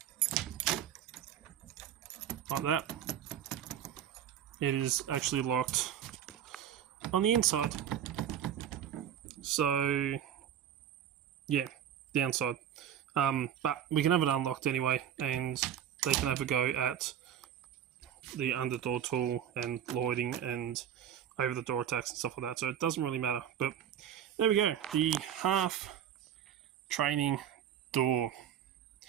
like that, it is actually locked on the inside. So yeah, downside. But we can have it unlocked anyway, and they can have a go at the under door tool and loiding and over the door attacks and stuff like that. So it doesn't really matter. But there we go, the half training door.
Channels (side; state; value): left; quieter; 9.8 dB